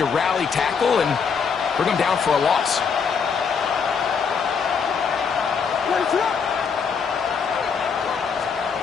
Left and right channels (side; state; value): right; quieter; 6.1 dB